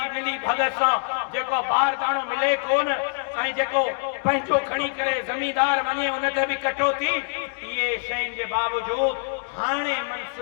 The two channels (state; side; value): silent; right; digital silence